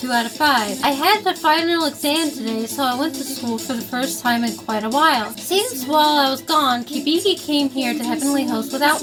2 out of 5. I had the final exam today, so I went to school for the first time in quite a while. Seems while I was gone, Kibiki came here to Heavenly Host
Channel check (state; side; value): identical; both; correlation 1.00